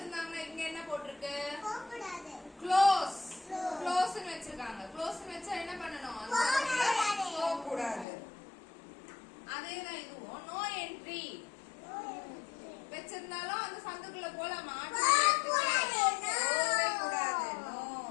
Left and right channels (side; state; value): right; drops out; at 8.1 s